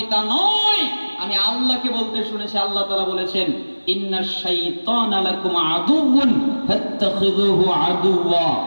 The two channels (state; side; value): inverted; both; correlation -1.00